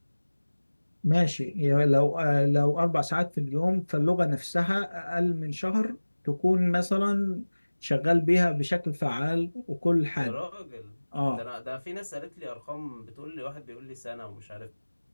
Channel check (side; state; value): both; inverted; correlation -1.00